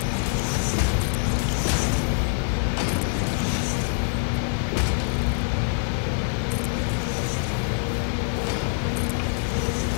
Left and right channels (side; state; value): right; silent; 62 dB below the other